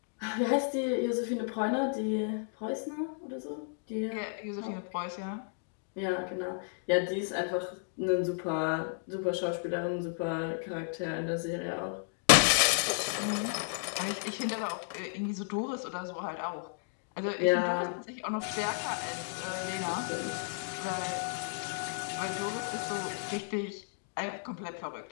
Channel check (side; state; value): right; silent; digital silence